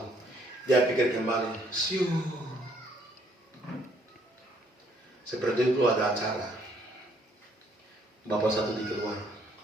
Dia pikir kembali, siu. Seperti itu ada acara. Bapak satu di keluar,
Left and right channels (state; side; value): normal; both; correlation 0.66